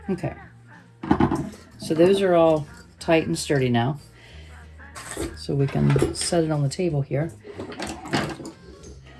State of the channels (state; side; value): identical; both; correlation 1.00